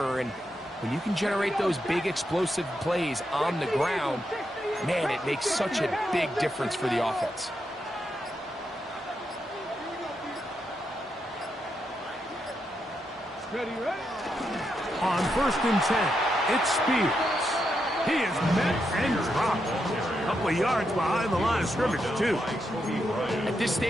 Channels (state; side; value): normal; both; correlation 0.83